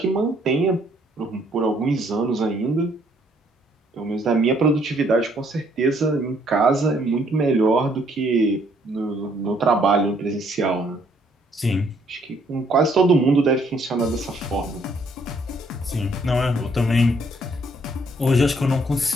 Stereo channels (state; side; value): normal; both; correlation 0.67